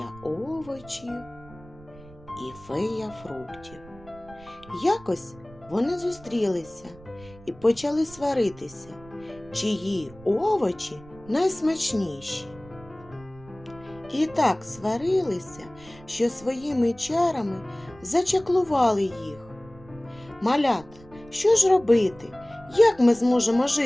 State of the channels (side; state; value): right; noise; rumble, 22 dB below the sound